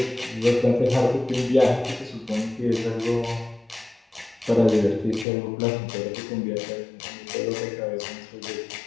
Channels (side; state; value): right; drops out; at 5.2 s